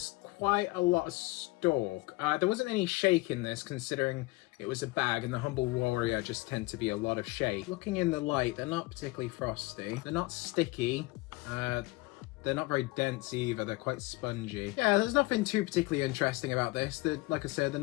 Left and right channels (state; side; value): quieter; right; 22.0 dB